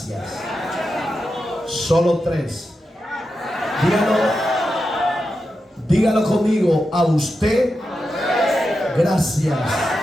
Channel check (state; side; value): normal; both; correlation 0.89